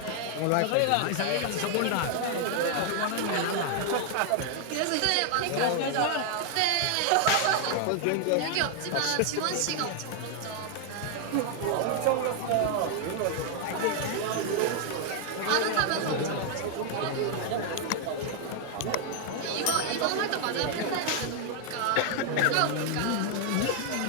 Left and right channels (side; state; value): both; different; correlation 0.00